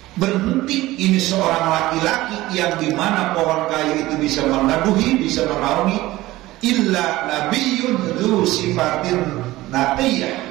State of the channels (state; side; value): quieter; left; 17.7 dB